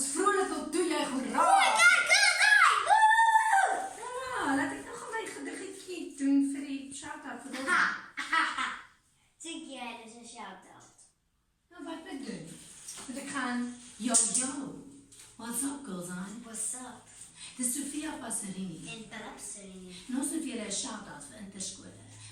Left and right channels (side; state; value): both; identical; correlation 1.00